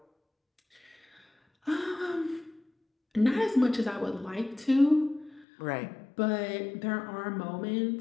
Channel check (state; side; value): drops out; right; at 5.5 s